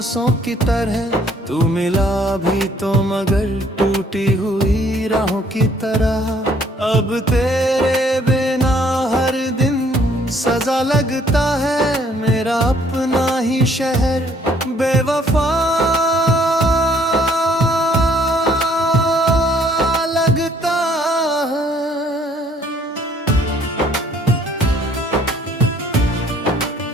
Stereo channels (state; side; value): normal; both; correlation 0.62